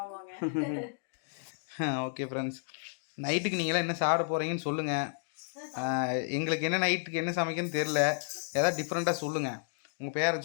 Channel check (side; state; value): right; silent; digital silence